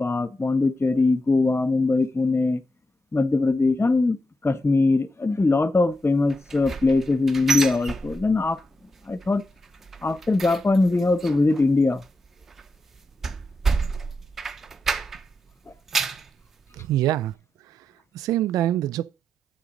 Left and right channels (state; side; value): normal; both; correlation 0.87